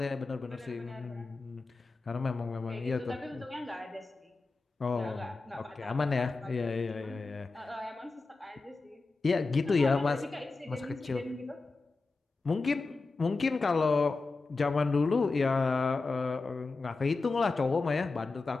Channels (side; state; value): right; quieter; 3.8 dB